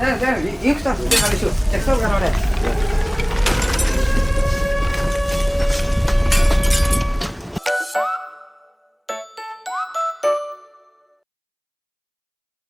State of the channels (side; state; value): both; identical; correlation 1.00